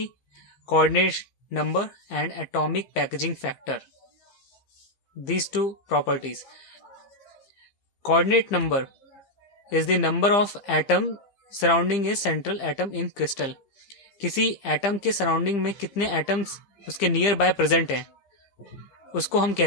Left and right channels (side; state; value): right; late; 15 ms